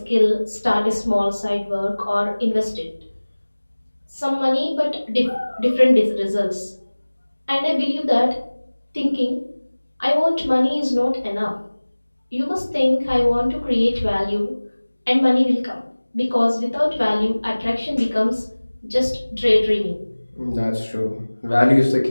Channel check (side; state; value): both; inverted; correlation -1.00